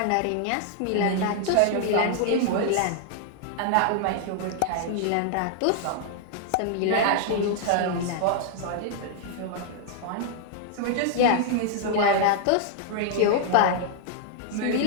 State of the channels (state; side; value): different; both; correlation 0.00